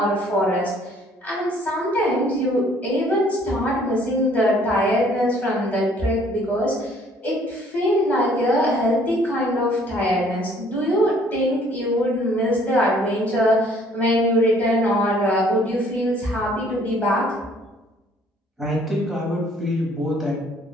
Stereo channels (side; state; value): both; normal; correlation 0.59